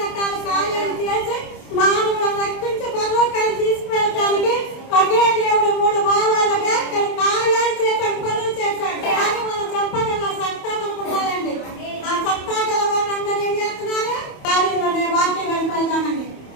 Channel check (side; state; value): right; late; 28 ms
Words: కార్యాలు చేసి మానవులను రక్షించి పరలోకాన్ని తీసుకువెళ్ళడానికి ఒకే దేవుడు 3 భావాలుగా కార్యాలు చేశాడు, పనులు చేశాడు. కానీ మనం చెప్పగల సత్తా మనకు ఉండాలండి. ఆ సత్తా గల వాళ్ళందరూ ఏం చేస్తున్నారు? కార్యంలోనే వాక్యం వెళ్ళిపోదామండి.